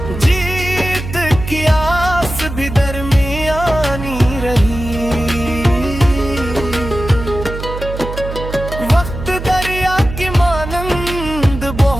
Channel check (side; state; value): right; noise; hum, 8 dB below the sound